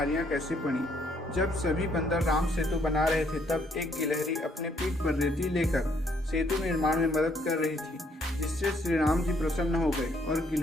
कैसे पड़ी? जब सभी बंदर राम सेतु बना रहे थे तब एक गिलहरी अपने पीठ पर रेती लेकर सेतु निर्माण में मदद कर रही थी, जिससे श्री राम जी प्रसन्न हो गए और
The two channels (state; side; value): normal; both; correlation 0.68